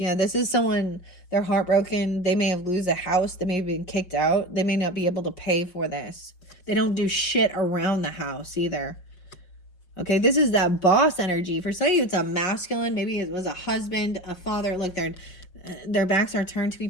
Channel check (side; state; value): right; late; 5.5 ms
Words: this is someone, they're heartbroken. They may have lose a house. They may have been kicked out. They may not be able to pay for this. They don't do shit around the house either. Okay, this is that boss energy. For some of you, it's a masculine. Maybe it was a husband, a father. Look, their backs are turned to